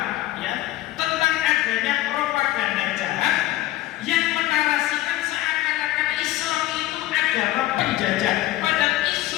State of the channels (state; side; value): quieter; right; 15.7 dB